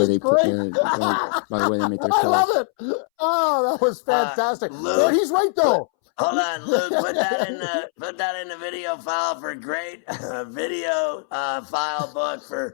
they put by the way they make their calls. I love it. Oh, that was fantastic. Luke, he's right though. Hold on, Luke. Put that in the video file for great video file book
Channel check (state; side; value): silent; right; 64 dB below the other